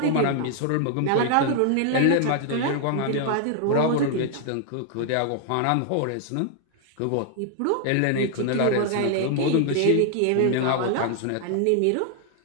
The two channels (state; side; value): different; both; correlation 0.00